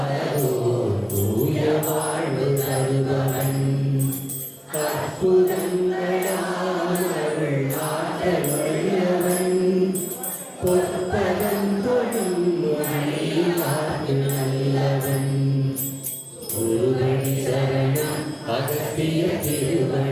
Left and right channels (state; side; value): identical; both; correlation 1.00